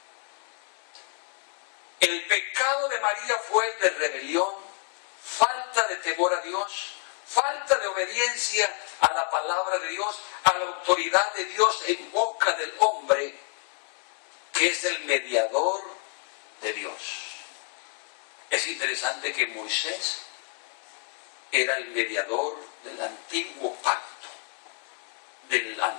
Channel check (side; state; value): right; quieter; 39.5 dB